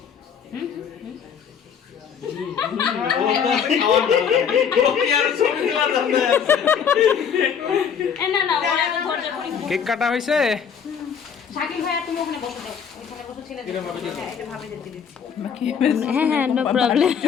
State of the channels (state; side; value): quieter; right; 7.4 dB